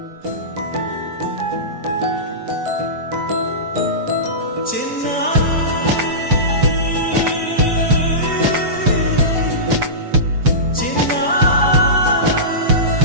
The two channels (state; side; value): late; left; 6.9 ms